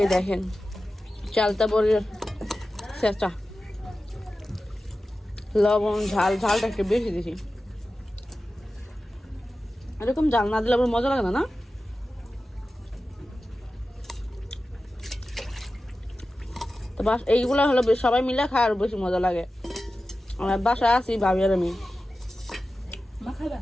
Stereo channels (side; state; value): both; normal; correlation 0.94